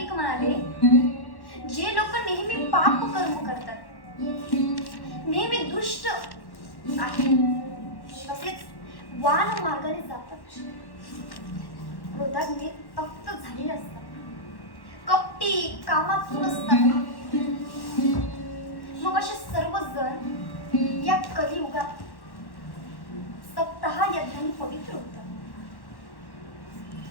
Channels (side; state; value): right; late; 1.1 ms